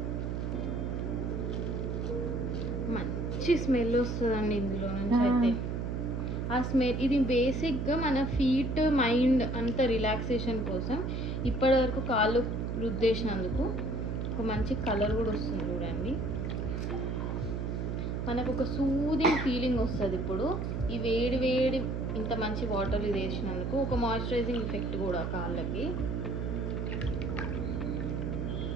మంచి స్మెల్ వస్తుందండి ఇందులో నుంచి. అయితే ఆ స్మెల్ ఇది బేసిక్గా మన ఫీట్ మైండ్ అంత రిలాక్సేషన్ కోసం ఇప్పటి వరకు కాళ్ళు రుద్దేసినందుకు ఒక మంచి కలర్ కూడా వస్తుంది చూడండి. మనకు ఒక సూదింగ్ ఫీలింగ్ వస్తుంది. ఇప్పుడు ఈ వేడి వేడి ఇంత మంచి వాటర్ ఇది వేసినందుకు ఒక మాయిశ్చరైజింగ్ ఎఫెక్ట్ కూడా కాళ్ళకి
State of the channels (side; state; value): right; noise; hum, 2 dB below the sound